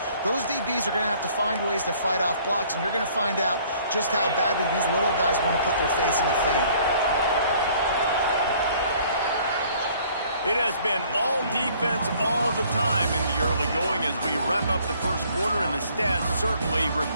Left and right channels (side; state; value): both; inverted; correlation -0.58